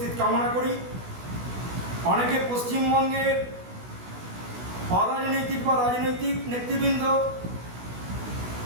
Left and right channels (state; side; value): late; left; 16 ms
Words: কামনা করি। অনেকে পশ্চিমবঙ্গের অরাজনৈতিক বা রাজনৈতিক নেতৃবৃন্দ